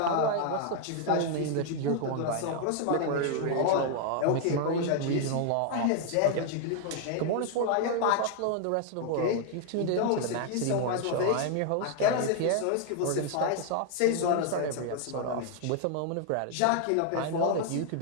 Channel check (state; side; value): different; both; correlation 0.00